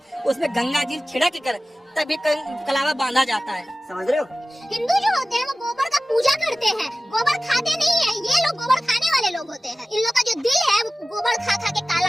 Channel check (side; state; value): both; normal; correlation 0.97